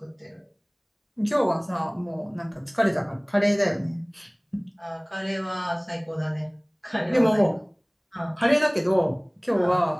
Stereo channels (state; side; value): identical; both; correlation 1.00